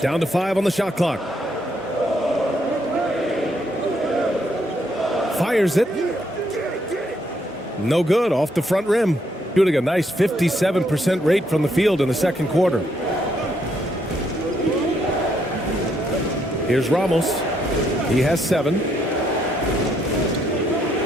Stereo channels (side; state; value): both; normal; correlation 0.73